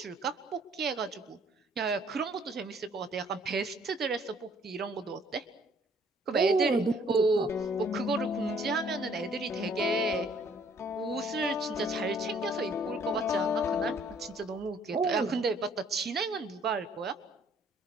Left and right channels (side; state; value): both; normal; correlation 0.60